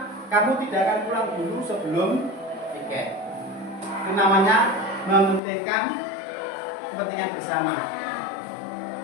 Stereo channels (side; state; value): right; drops out; at 5.4 s